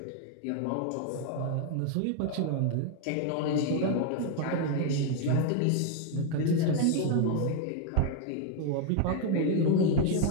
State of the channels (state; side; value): different; both; correlation 0.00